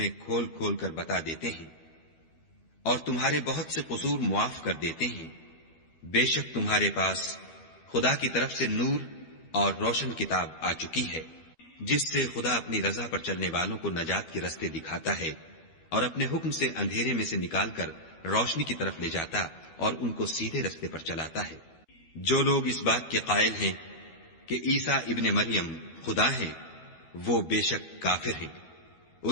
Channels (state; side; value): late; right; 12 ms